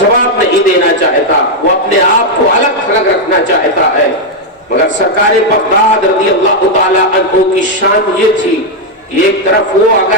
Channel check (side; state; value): both; normal; correlation 0.00